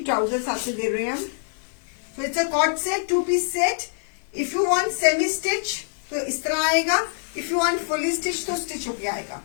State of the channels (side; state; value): right; silent; 62 dB below the other